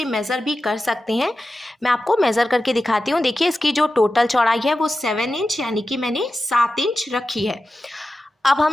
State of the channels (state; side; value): normal; both; correlation 0.93